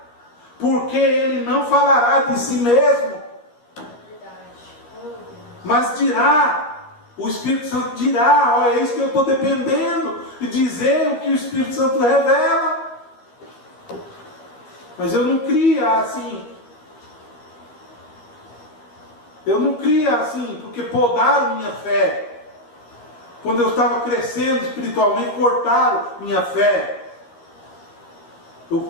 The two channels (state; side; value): late; right; 13 ms